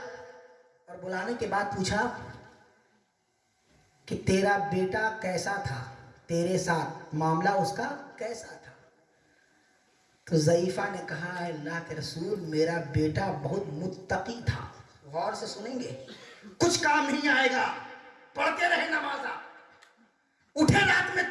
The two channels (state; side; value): identical; both; correlation 1.00